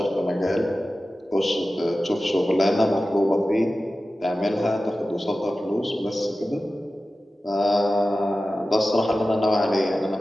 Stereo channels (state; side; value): normal; both; correlation 0.95